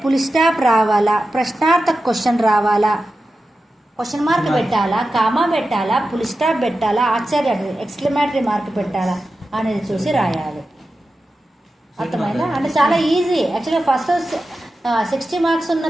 ఫుల్ స్టాప్ రావాలా, ప్రశ్నార్థక క్వశ్చన్ రావాలా, క్వశ్చన్ మార్క్ పెట్టాలా, కామా పెట్టాలా, ఫుల్ స్టాప్ పెట్టాలా, ఆశ్చర్య ఎక్స్క్లమేటరీ మార్క్ పెట్టాలా అనేది చూసి రాయాలి. అర్థమైందా? అంటే చాలా ఈజీ. యాక్చువల్గా ఫస్ట్ 60 మార్క్స్ ఉన్న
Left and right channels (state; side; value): normal; both; correlation 0.92